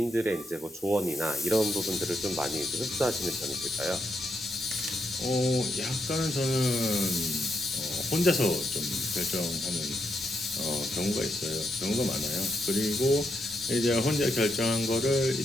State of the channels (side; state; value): both; normal; correlation 0.80